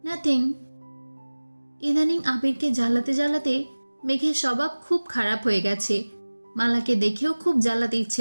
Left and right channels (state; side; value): inverted; both; correlation -1.00